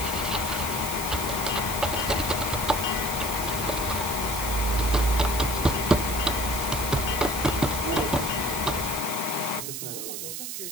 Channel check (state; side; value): noise; right; hiss, 5 dB below the sound